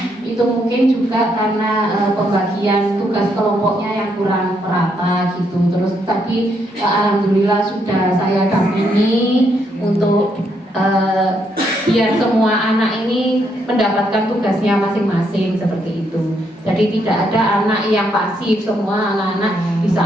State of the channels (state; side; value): normal; both; correlation 0.75